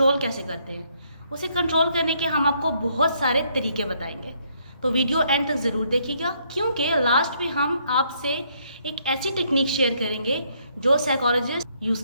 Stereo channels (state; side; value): inverted; both; correlation -0.70